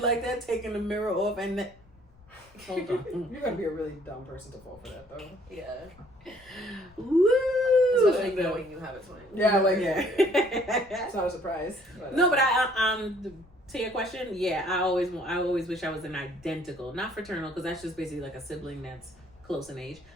like that, taking the mirror off, and hold on. You're gonna be a really dumb person to fall for that though. Yeah. Woo! Especially knowing you have a twin. Yeah, like Yeah. it's not a surprise. No, but to your question, yeah, I always wish I was an identical, not fraternal, because that's just basically like a sibling that's close in age.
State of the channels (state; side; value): noise; left; rumble, 26 dB below the sound